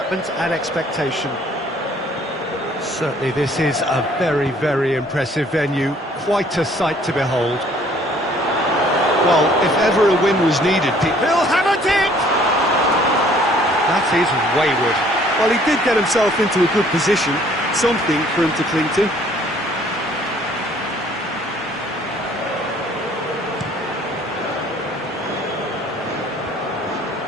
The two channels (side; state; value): both; normal; correlation 0.58